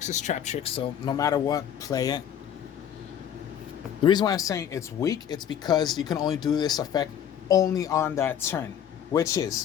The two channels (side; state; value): right; quieter; 9.3 dB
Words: is Traptrix, so no matter what, play it. The reason why I'm saying it's weak, it's because you can only do this effect only on that turn, which